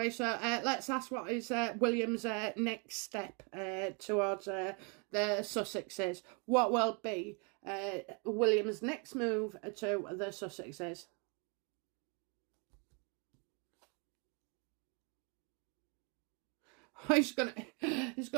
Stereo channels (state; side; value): quieter; left; 34.9 dB